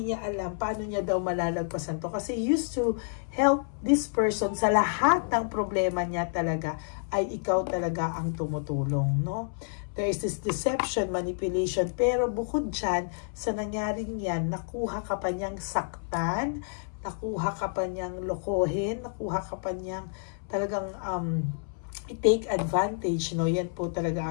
niya alam paano niya daw malalagpasan to. Kasi used to help this person sa lahat ng problema niya talaga, ay ikaw talaga ang tumutulong, no? There is this deception, manipulation, pero bukod dyan, sa nangyaring yan, nakuha ka pa niyang saktan, nakuha ka pa niyang lokohin, nakuha ka pa niyang talagang take advantage, no? Yan po talaga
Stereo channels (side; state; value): right; silent; 59 dB below the other